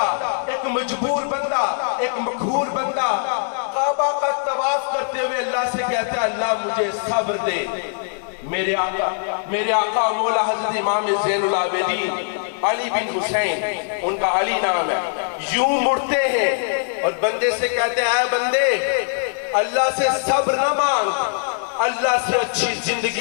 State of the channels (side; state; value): right; silent; digital silence